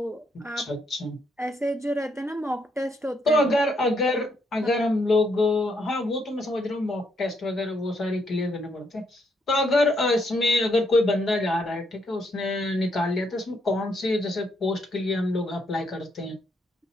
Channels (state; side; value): normal; both; correlation 0.75